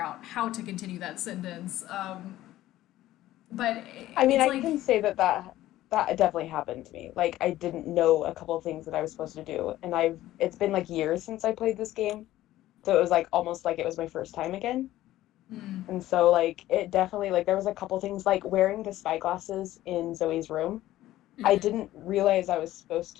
out how to continue that sentence. But I mean, it's I like, can say that definitely happened to me. Like, I didn't know a couple of things that I was supposed to do, and it's been like years since I played this game, so it was like almost like it was my first time again. And so like it definitely like there was a couple things like wearing the spy glasses in Zoe's room. I didn't realize I was supposed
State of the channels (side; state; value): right; quieter; 14.8 dB